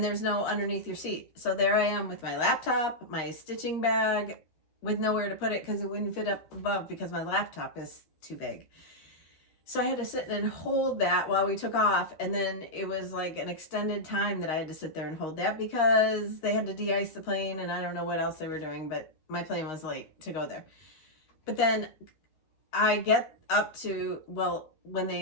there's no underneath your seat. So there I am with my laptop, my stitching bag, with nowhere to put it because it wouldn't fit up above because my laptop is too big. So I had to sit and hold that while we took off. And then it was like an extended time that I had to sit there and hold that because they had to de-ice the plane and I don't know what else they were doing, but my plane was late to go there. But then I get up to, when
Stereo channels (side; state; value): right; late; 13 ms